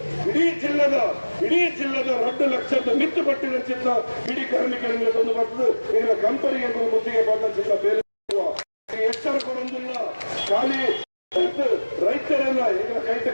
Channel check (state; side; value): inverted; both; correlation -1.00